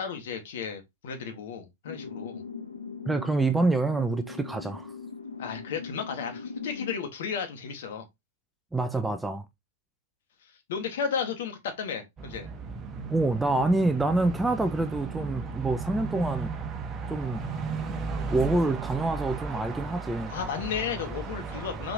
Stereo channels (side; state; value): both; normal; correlation 0.63